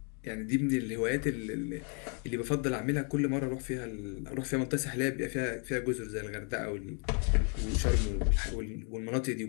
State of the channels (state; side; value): quieter; right; 39.1 dB